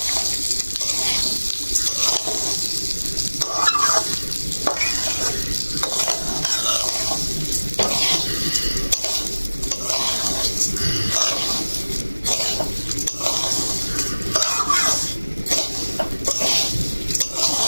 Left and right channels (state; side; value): inverted; both; correlation -1.00